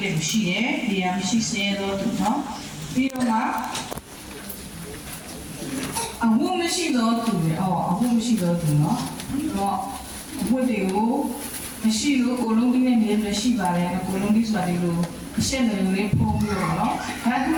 တယ်လူရှိတယ်နေရာမရှိစေတော့သူနော်ပြီးတော့မှအဝတ်မရှိတော့သူလေအဝတ်မရှိတော့သူနော်တော့အဝတ်တွေကိုမရှိလို့ကိုလုံးကြီးနဲ့နေရရှိပါတယ်ကိုလုံးကြီးဆိုတာဒီလိုအရှက်တွေလေးဖုံးပြီးတော့နော်ဒါကန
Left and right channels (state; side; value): identical; both; correlation 1.00